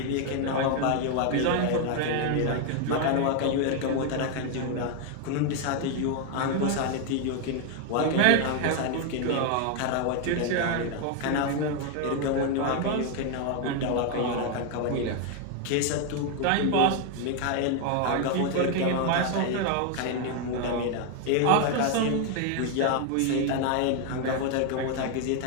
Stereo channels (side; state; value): both; different; correlation 0.01